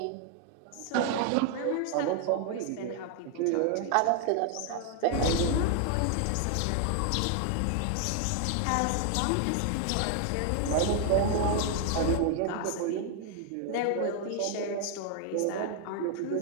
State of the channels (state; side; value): different; both; correlation 0.00